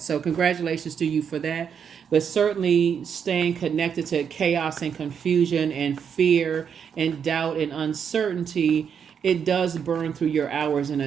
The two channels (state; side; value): quieter; left; 7.4 dB